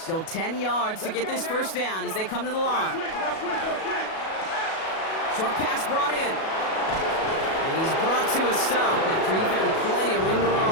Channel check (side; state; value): right; late; 37 ms